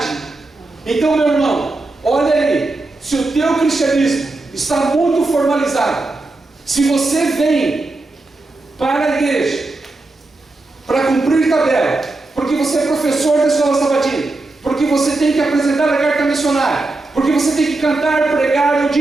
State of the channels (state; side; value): quieter; left; 3.1 dB